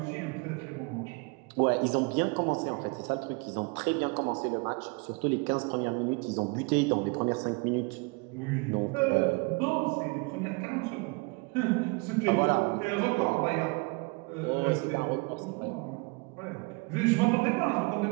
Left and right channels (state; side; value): quieter; left; 29.9 dB